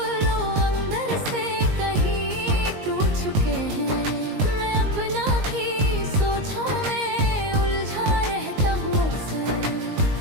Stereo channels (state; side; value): late; left; 19 ms